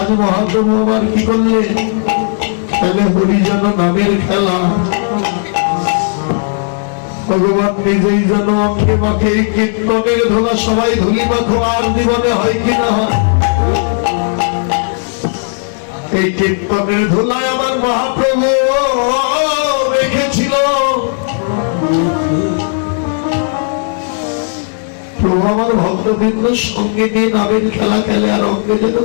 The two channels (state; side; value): silent; right; digital silence